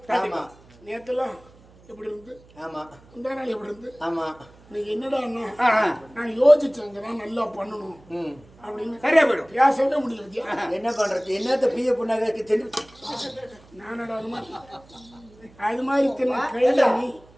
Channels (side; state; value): right; noise; hum, 26 dB below the sound